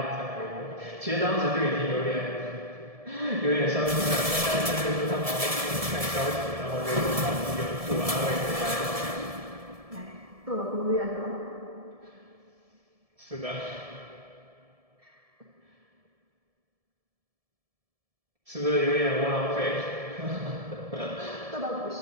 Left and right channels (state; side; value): late; left; 1.7 ms